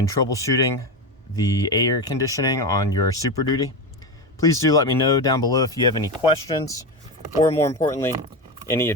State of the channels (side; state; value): both; normal; correlation 0.18